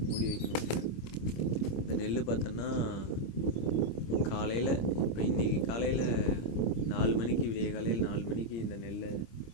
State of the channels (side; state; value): right; late; 26 ms